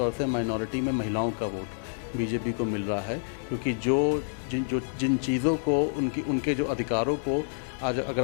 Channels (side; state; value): right; silent; digital silence